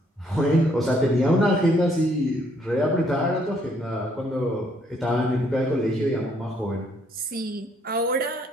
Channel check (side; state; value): both; normal; correlation 0.68